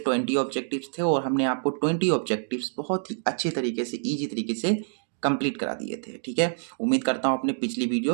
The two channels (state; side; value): silent; left; digital silence